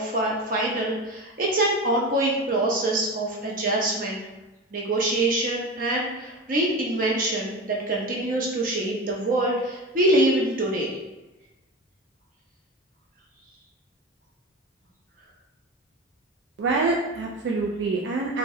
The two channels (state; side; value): normal; both; correlation 0.27